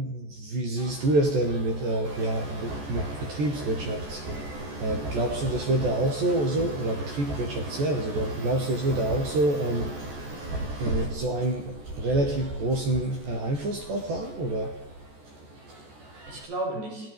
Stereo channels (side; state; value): left; late; 14 ms